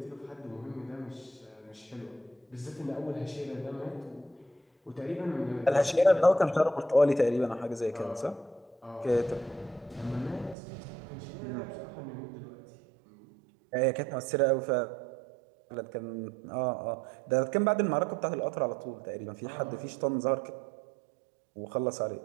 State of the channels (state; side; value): drops out; left; at 10.6 s